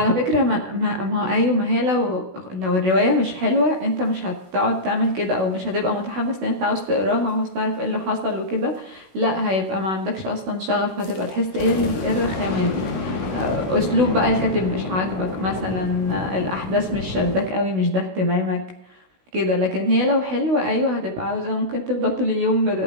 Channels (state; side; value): late; left; 16 ms